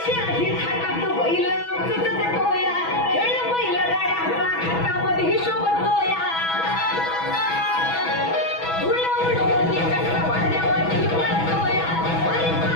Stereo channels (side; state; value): right; late; 6.1 ms